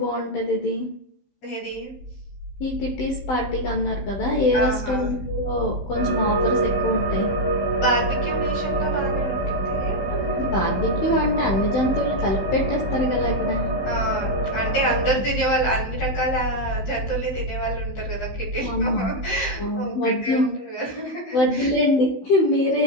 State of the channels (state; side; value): late; right; 15 ms